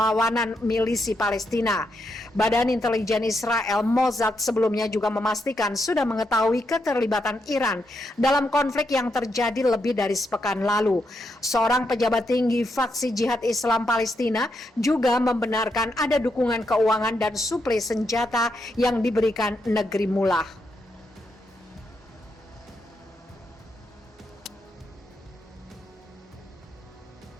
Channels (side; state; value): both; normal; correlation 0.81